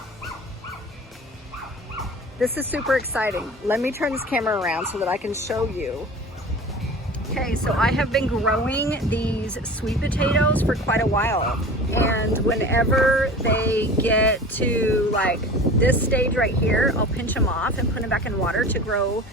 This is super exciting. Let me turn this camera around so that I can show you. Okay, so I have been growing these sweet potatoes for quite a while. And whenever they get to like this stage right here, I'll pinch them off and put them back in water to grow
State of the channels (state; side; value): normal; both; correlation 0.38